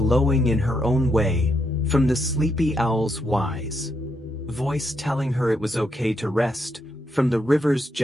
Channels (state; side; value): normal; both; correlation 0.79